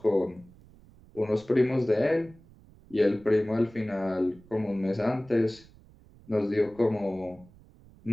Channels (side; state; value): right; noise; rumble, 25 dB below the sound